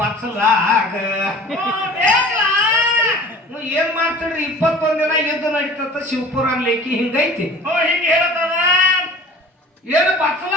ಏನ್ ಮಾಡ್ತಿದ್ರಿ? 21 ದಿನ ಯುದ್ಧ ನಡೀತದ ಶಿವಪುರ ಲೇಖಿ ಹಿಂಗೈತಿ. ಹಿಂಗ ಹೇಳ್ತದ ಏನು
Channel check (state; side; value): normal; both; correlation 0.43